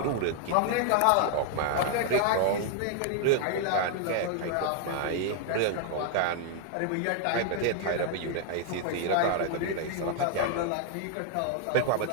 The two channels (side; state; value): both; different; correlation 0.00